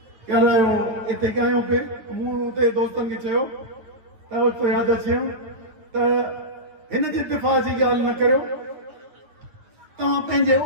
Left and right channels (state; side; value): late; left; 9.3 ms